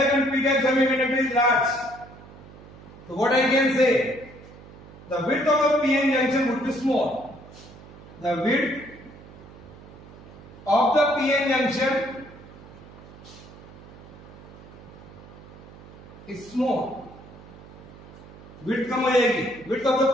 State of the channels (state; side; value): noise; right; hum, 19 dB below the sound